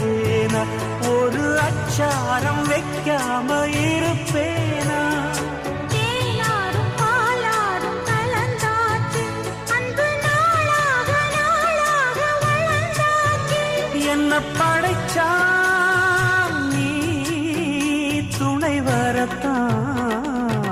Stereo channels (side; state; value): both; identical; correlation 1.00